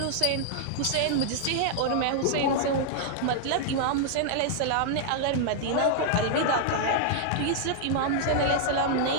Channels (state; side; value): different; both; correlation -0.01